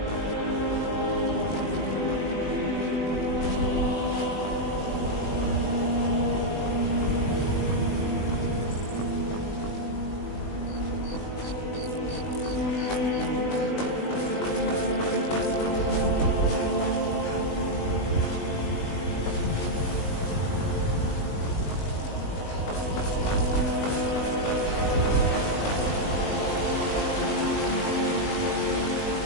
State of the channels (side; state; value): right; late; 20 ms